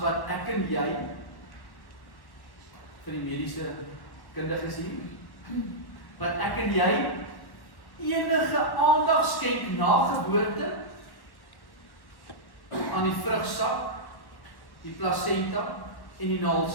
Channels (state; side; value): late; right; 1.1 ms